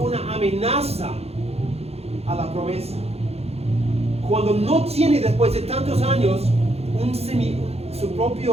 amenaza a la promesa. Cuando no tiene después de tantos años un su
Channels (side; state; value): left; late; 0.30 ms